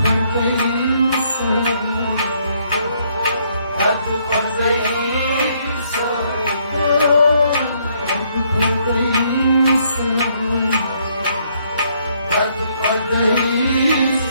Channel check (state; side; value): inverted; both; correlation -0.69